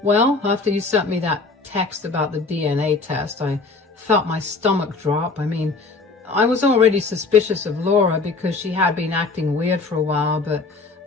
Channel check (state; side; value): quieter; right; 3.9 dB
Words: Well, after you sent me that text about the DNA test, I felt my stomach drop. I was already suspicious of Laura because she had been acting weird for a while, but